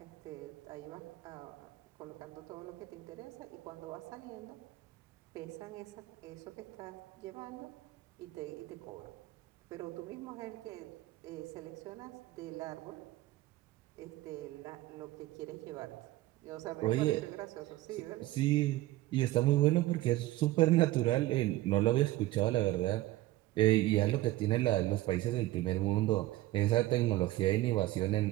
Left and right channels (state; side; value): quieter; left; 16.9 dB